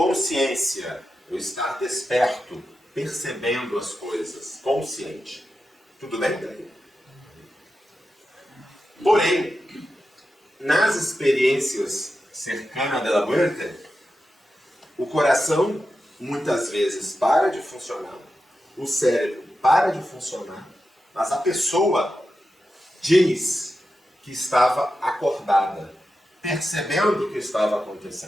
ou estar desperto, percebendo as coisas, consciente. Tudo bem? Porém, nas experiências cercanas da morte, o coração muitas vezes para de funcionar, o cérebro para de funcionar, mas a pessoa diz que estava acordada, percebendo o que estava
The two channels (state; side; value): normal; both; correlation 0.90